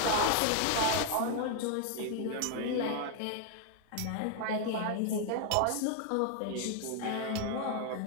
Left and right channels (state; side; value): different; both; correlation 0.00